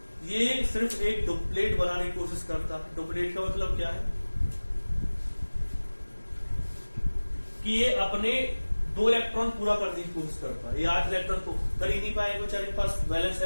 ये सिर्फ एक डुप्लेट बनाने की कोशिश करता है। डुप्लेट का मतलब क्या है कि ये अपने 2 इलेक्ट्रॉन पूरा करने की कोशिश करता है। ये 8 इलेक्ट्रॉन को कर ही नहीं पाएगा बेचारे के पास वैलेंस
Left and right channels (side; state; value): both; inverted; correlation -1.00